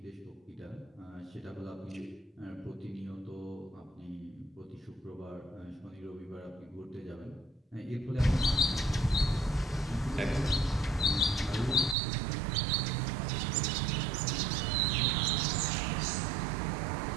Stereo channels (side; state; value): left; drops out; at 12.0 s